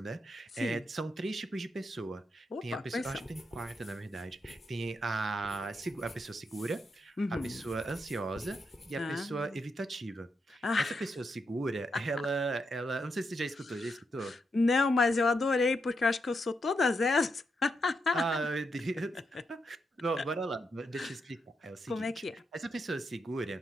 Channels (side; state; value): both; normal; correlation 0.83